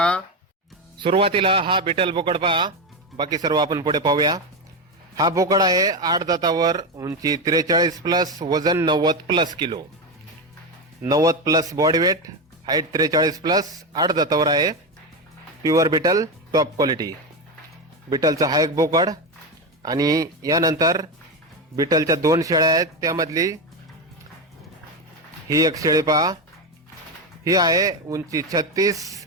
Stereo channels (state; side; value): normal; both; correlation 0.14